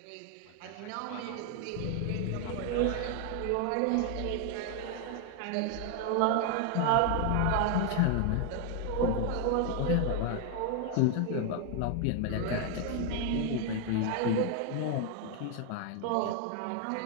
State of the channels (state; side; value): different; both; correlation 0.01